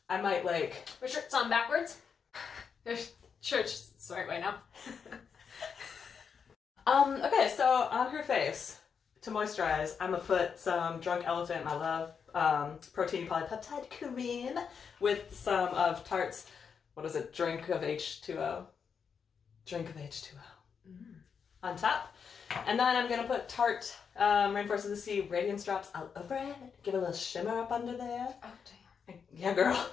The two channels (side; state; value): right; quieter; 6.5 dB